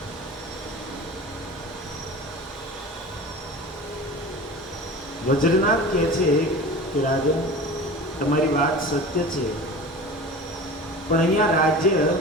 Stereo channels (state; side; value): normal; both; correlation 0.36